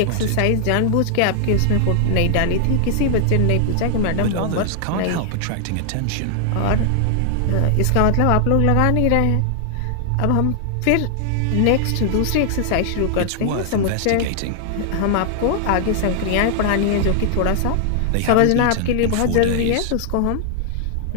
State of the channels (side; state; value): both; different; correlation 0.00